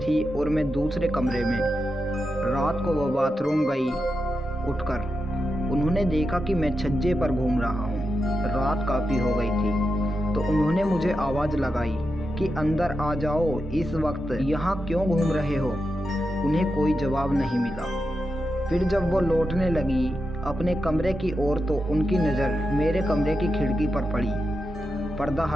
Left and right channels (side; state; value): both; normal; correlation 0.88